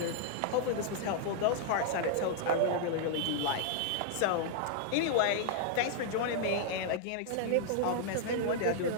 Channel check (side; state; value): both; different; correlation -0.01